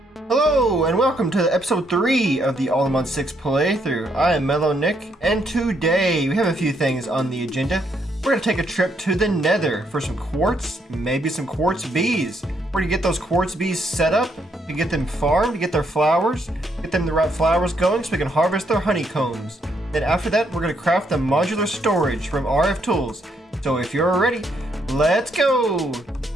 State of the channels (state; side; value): normal; both; correlation 0.74